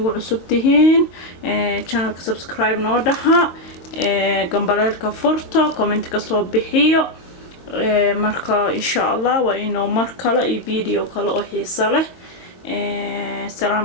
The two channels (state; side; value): late; right; 22 ms